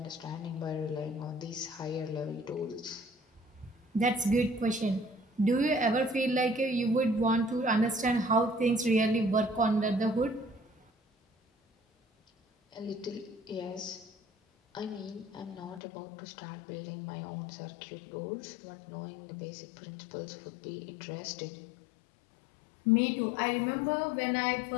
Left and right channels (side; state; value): right; drops out; at 15.8 s